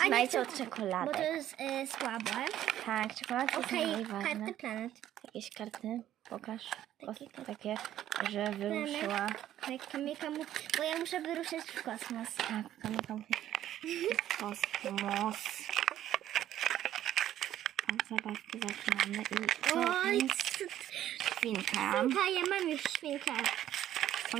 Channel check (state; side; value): quieter; left; 12.2 dB